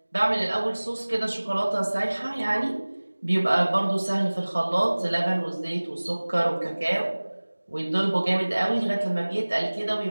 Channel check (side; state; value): both; inverted; correlation -1.00